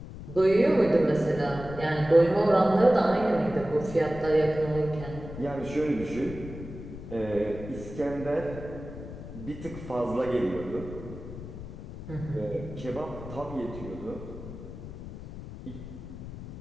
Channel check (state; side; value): noise; left; rumble, 12 dB below the sound